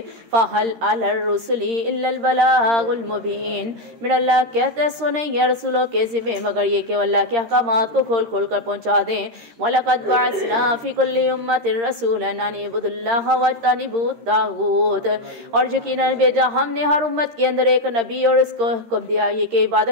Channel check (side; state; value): left; late; 13 ms